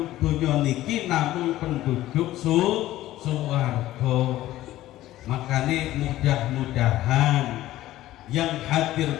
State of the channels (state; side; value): quieter; right; 15.0 dB